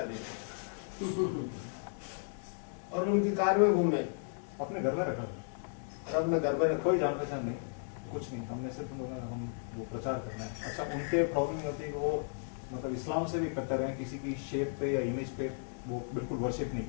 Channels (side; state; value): right; silent; 55 dB below the other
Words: दिया और उनकी कार में घूमे, अपने घर में रखा और अपने घर में रखो। कोई जान पहचान नहीं, कुछ नहीं, हमने सिर्फ उन लोगों का हम वो प्रचार करना है। अच्छा, उनके प्रॉब्लम होती है कि वो मतलब इस्लाम से भी कट्टर हैं, किसी की शेप पे या इमेज पे वो बिल्कुल वर्शिप नहीं